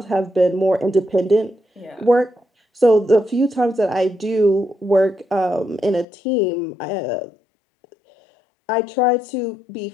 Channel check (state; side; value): drops out; right; at 6.1 s